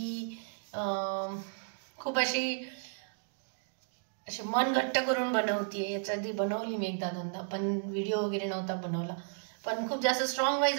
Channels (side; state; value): left; silent; digital silence